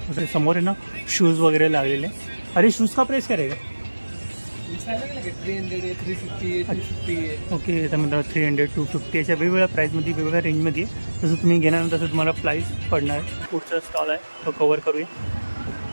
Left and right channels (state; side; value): inverted; both; correlation -1.00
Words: समोर आहे ना शूज वगैरे लागलेले. अरे शूज का प्राइस काय रहेगा? 300 है, 350 है, 250 है. ओके तर मित्रांनो 300 250 अशा वेगवेगळ्या प्राईजमध्ये वेगवेगळ्या रेंजमध्ये जसं तुम्ही घेणार तसं तुम्हाला प्राईस पडणार आहे. पुढचा स्टॉल आहे तो कवर करूया.